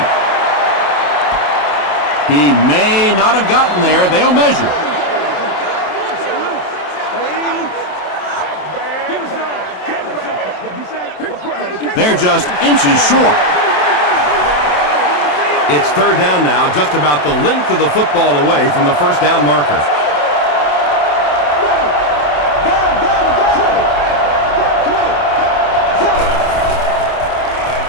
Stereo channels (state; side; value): late; right; 27 ms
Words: He may not have gotten there. They'll measure. They're just inches short. It's 3rd down now, just about the length of the football away from the first down marker.